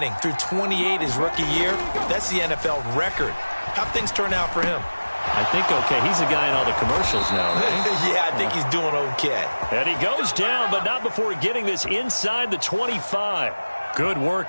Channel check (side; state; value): both; inverted; correlation -1.00